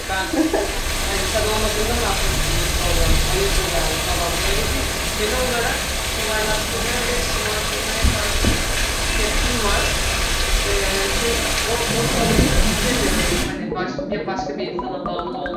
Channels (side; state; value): both; identical; correlation 1.00